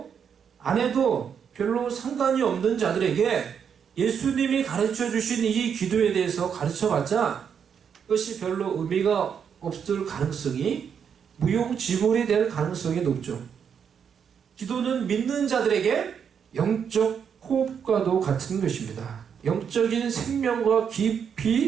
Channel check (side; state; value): left; quieter; 7.4 dB